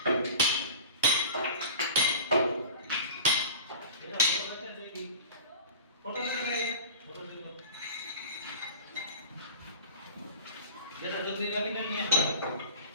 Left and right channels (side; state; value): both; inverted; correlation -0.39